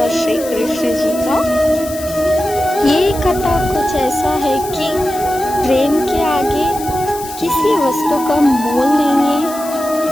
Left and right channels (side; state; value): left; noise; hiss, 13 dB below the sound